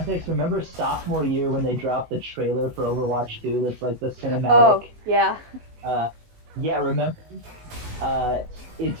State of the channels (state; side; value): late; left; 19 ms